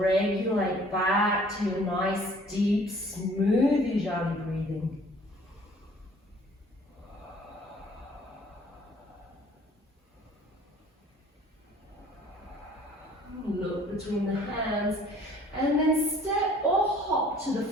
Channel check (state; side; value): normal; both; correlation 0.54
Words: back to your nice, deep, smooth Ujjayi breathing. Look between the hands. And then step or hop to the